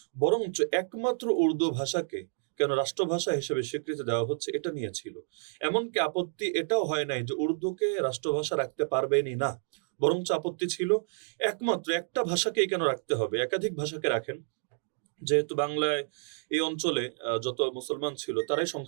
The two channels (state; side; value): silent; left; digital silence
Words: বরঞ্চ একমাত্র উর্দু ভাষাকে কেন রাষ্ট্রভাষা হিসেবে স্বীকৃতি দেওয়া হচ্ছে এটা নিয়ে ছিল। এমনকি আপত্তি এটাও হয় নাই যে উর্দুকে রাষ্ট্রভাষা রাখতে পারবেনই না, বরঞ্চ আপত্তি ছিল একমাত্র একটা ভাষাকেই কেন রাখতে হবে, একাধিক ভাষাকে রাখেন। যেহেতু বাংলায় এই অঞ্চলে যত মুসলমান ছিল তারাই